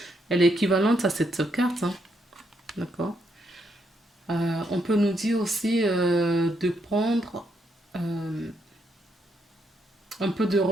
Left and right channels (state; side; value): normal; both; correlation 0.77